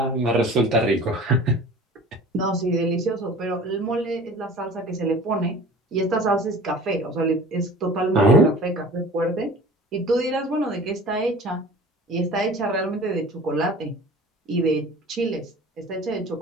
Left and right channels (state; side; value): normal; both; correlation 0.42